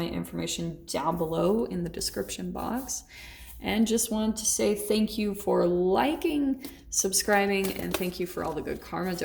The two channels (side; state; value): both; identical; correlation 1.00